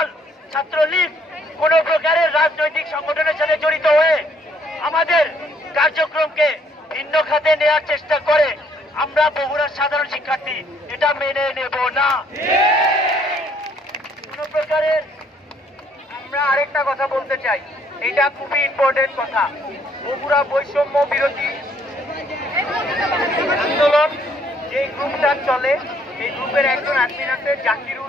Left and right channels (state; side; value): normal; both; correlation 0.65